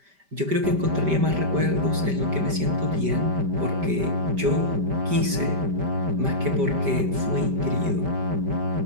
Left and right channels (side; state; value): left; late; 5.1 ms